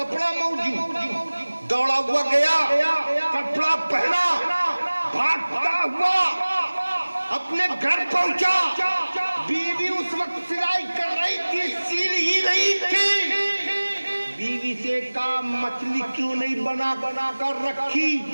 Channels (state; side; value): inverted; both; correlation -1.00